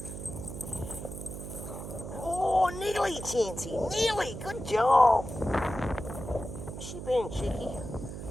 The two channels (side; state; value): right; noise; hum, 9 dB below the sound